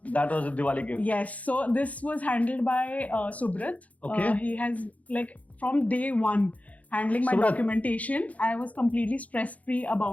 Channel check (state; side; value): late; right; 0.070 ms